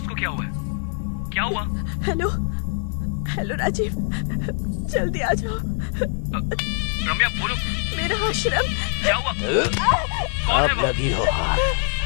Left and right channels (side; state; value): right; silent; 63 dB below the other